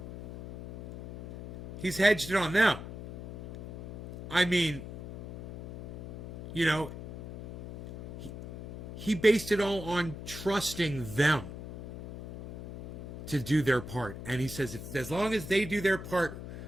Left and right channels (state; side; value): noise; left; hum, 11 dB below the sound